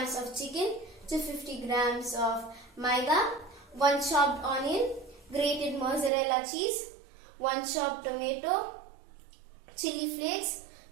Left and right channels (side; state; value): left; drops out; at 6.1 s